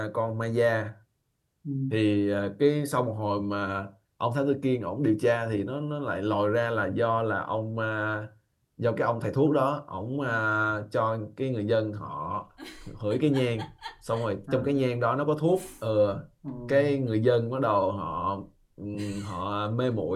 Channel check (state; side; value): identical; both; correlation 1.00